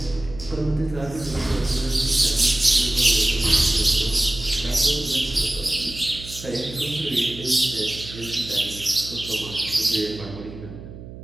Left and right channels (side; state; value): right; noise; hum, 14 dB below the sound